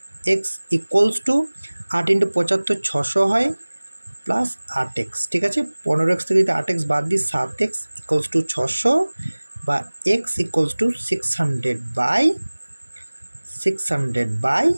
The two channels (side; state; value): both; inverted; correlation -1.00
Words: ইকুয়ালস টু 8 × 75 600 হয় প্লাস 8x। ঠিক আছে, 15x থেকে যদি 8x বাদ দিই 7x ইকুয়ালস টু 600 বা x ইকুয়ালস টু